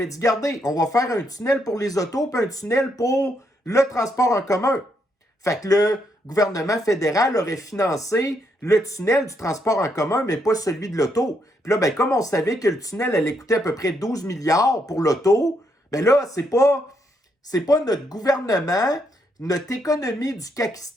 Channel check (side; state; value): both; normal; correlation 0.76